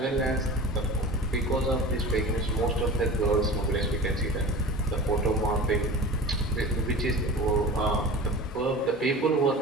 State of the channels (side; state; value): both; normal; correlation 0.36